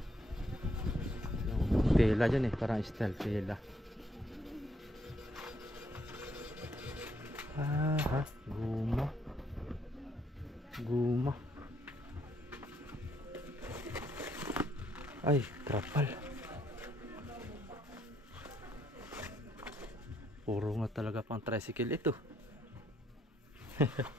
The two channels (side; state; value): both; normal; correlation 0.72